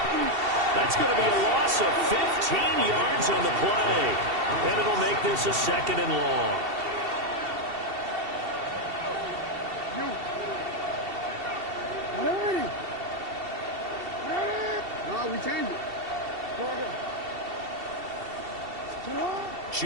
That's going to be a loss of 15 yards on the play. And it'll make this a 2nd and long. Ready? No, we changed it.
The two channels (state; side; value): late; left; 2.7 ms